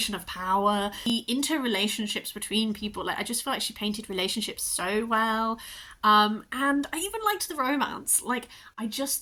of power, the interrelationships between people. Like I just feel like she painted relationships so well. And I even liked the romance. Like, I just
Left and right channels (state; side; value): identical; both; correlation 1.00